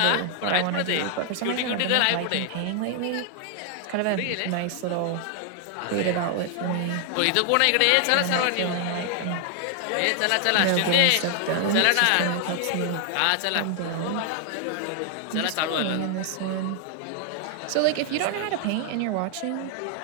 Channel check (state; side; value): different; both; correlation 0.00